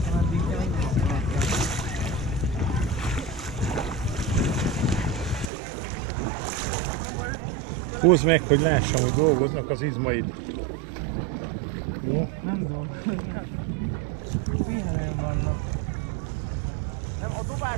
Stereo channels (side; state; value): left; drops out; at 5.5 s